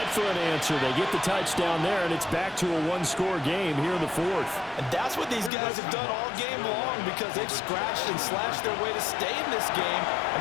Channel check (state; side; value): drops out; right; at 5.5 s